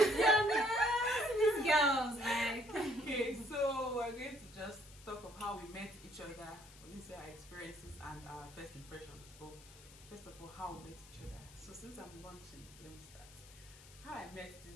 girls, like. Okay, so we're going to just talk of how we met each other. We're going to say our experiences and our first impressions. So first of all, how we met each other. So since I'm launching, let me start. How I met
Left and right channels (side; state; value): left; noise; hiss, 20 dB below the sound